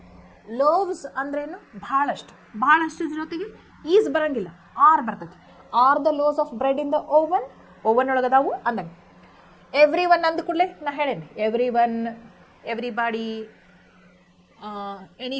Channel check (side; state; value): both; identical; correlation 1.00